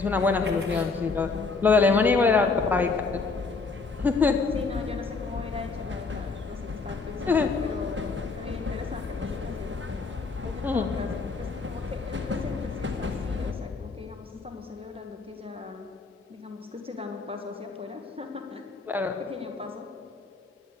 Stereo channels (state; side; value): quieter; right; 4.2 dB